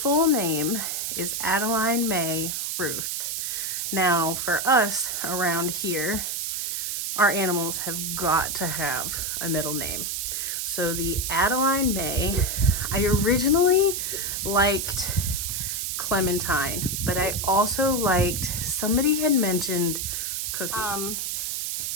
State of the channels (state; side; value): noise; right; hiss, 2 dB below the sound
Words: name is Adeline Mae Ruth. Now, for us around here, our animals have got to have a middle name. So the Adeline Mae, I originally liked Clementine, but I also liked, somebody had mentioned Cookie.